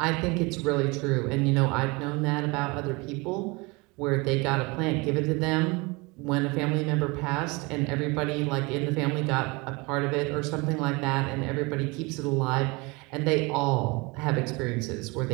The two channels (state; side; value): quieter; left; 26.3 dB